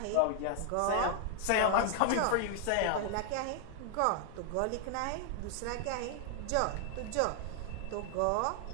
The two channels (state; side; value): different; both; correlation 0.00